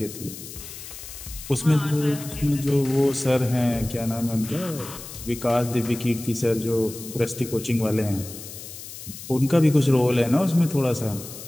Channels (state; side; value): noise; left; hiss, 13 dB below the sound